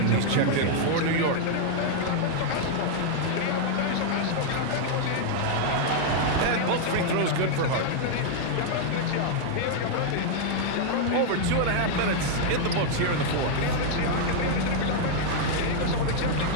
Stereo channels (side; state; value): both; different; correlation -0.01